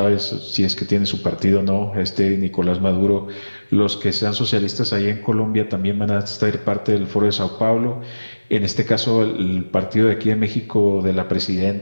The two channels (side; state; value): both; inverted; correlation -1.00